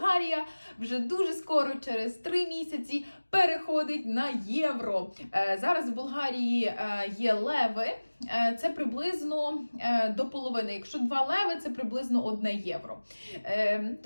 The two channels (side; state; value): both; inverted; correlation -1.00